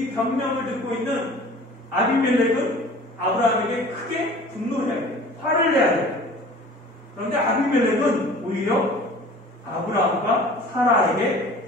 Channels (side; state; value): both; normal; correlation 0.44